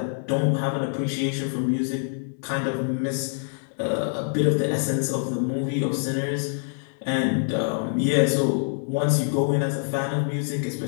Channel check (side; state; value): right; silent; digital silence